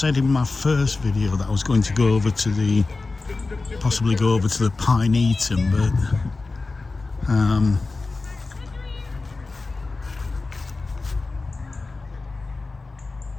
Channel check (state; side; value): quieter; right; 3.6 dB